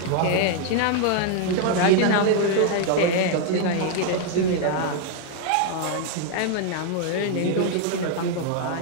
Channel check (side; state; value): both; different; correlation 0.00